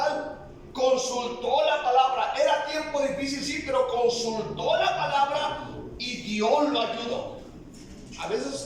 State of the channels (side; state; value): both; identical; correlation 1.00